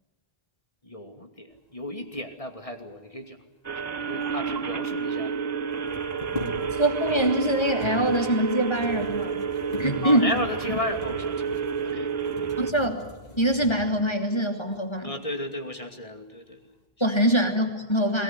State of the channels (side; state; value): right; late; 1.3 ms